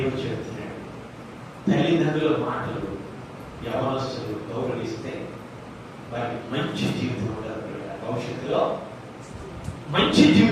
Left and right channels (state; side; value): identical; both; correlation 1.00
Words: చెబుతున్నాడు, తల్లిదండ్రుల మాటలు యవనస్తులు గౌరవిస్తే వారికి మంచి జీవితం ఉంటారు. భవిష్యత్తులో మంచి